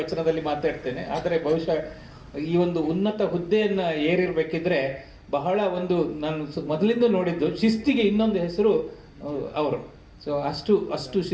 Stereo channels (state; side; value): identical; both; correlation 1.00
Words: ಮಾತಾಡ್ತೇನೆ. ಆದರೆ ಬಹುಶಃ ಈ ಒಂದು ಉನ್ನತ ಹುದ್ದೆಯನ್ನು ಏರಿರಬೇಕಿದ್ರೆ ಬಹಳ ಒಂದು ನಾನು ಮೊದಲಿಂದ ನೋಡಿದ್ದು ಶಿಸ್ತಿಗೆ ಇನ್ನೊಂದು ಹೆಸರು ಅವರು. ಸೊ ಅಷ್ಟು